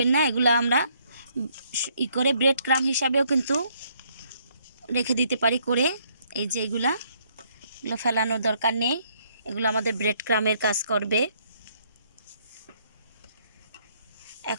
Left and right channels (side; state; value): both; inverted; correlation -0.68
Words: না, এগুলো আমরা করে ব্রেড ক্রাম্ব হিসাবেও কিন্তু রেখে দিতে পারি করে। এই যে এগুলো ফেলানোর দরকার নেই, এগুলো আমাদের ব্রেড ক্রাম্বের কাজ করবে।